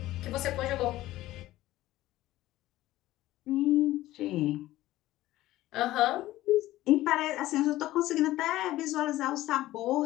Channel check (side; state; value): right; quieter; 15.9 dB